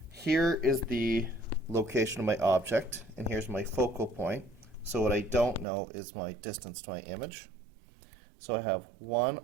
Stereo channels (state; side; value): drops out; left; at 5.7 s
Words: here is the location of my object, and here's my focal point. So what I don't know is my distance to my image. So I have